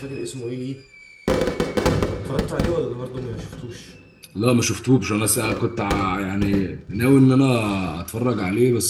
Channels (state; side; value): identical; both; correlation 1.00